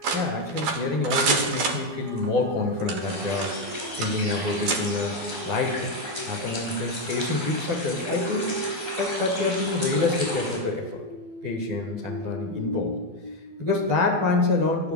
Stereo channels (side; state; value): left; late; 12 ms